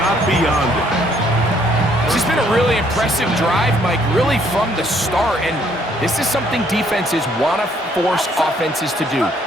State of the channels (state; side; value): normal; both; correlation 0.65